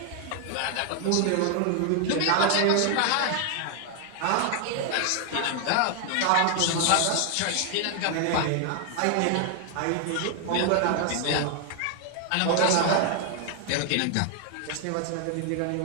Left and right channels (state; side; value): different; both; correlation 0.00